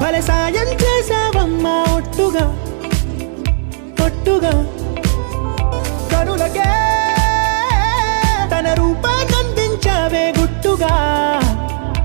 భలే సాయం చేసావమ్మా ఒట్టుగా ఒట్టుగా కనులకే తన రూపాన్నందించావే గుట్టుగా.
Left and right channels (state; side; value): silent; left; digital silence